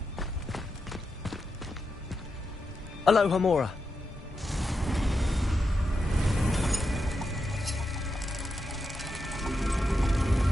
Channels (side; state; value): both; normal; correlation 0.86